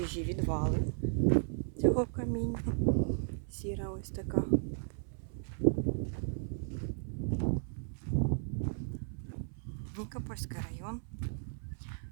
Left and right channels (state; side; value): silent; left; 54 dB below the other